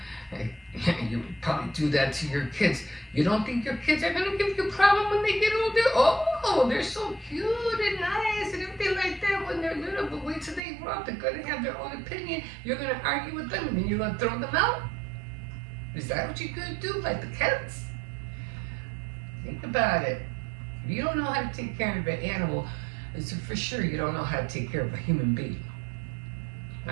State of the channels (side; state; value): left; drops out; at 10.6 s